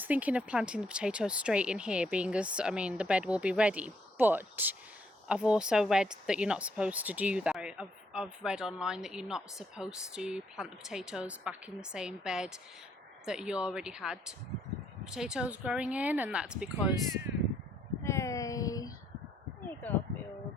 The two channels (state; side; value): normal; both; correlation 0.71